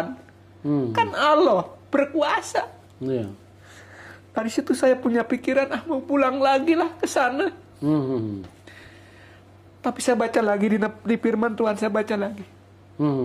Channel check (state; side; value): identical; both; correlation 1.00